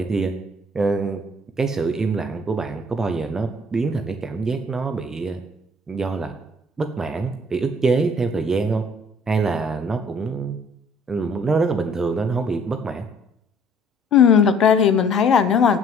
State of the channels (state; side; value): normal; both; correlation 0.57